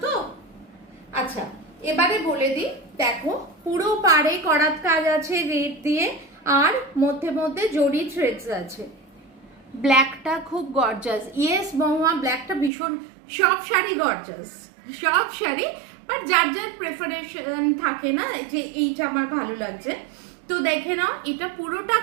তো? আচ্ছা, এবারে বলে দিই। দেখো, পুরো পাড়ে করাত কাজ আছে রেড দিয়ে, আর মধ্যে মধ্যে জরি থ্রেডস আছে। ব্ল্যাকটা খুব গর্জাস। ইয়েস মহুয়া, ব্ল্যাকটা ভীষণ, সব শাড়ি গর্জাস, সব শাড়ি, বাট যার যার প্রেফারেশন থাকে না, যে এইটা আমার ভালো লাগছে। তো দেখে নাও, এটা পুরোটা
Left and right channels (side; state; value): left; drops out; at 12.7 s